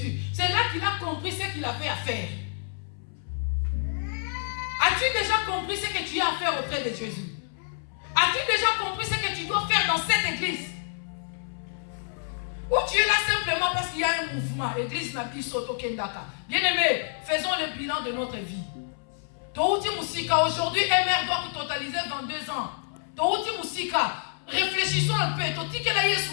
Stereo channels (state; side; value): silent; right; 59 dB below the other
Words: c'est là qu'il a compris ce qu'il avait à faire. As-tu déjà compris ce que tu as à faire auprès de Jésus? As-tu déjà compris ce que tu dois faire dans cette église? Ou tu es là simplement parce qu'il y a un mouvement, l'église n'a plus sauté au Kendaka. Bien aimé, faisons le bilan de notre vie. Touti Moussika, aujourd'hui, MR doit totaliser 22 ans. Touti Moussika, réfléchissons un peu. Touti que la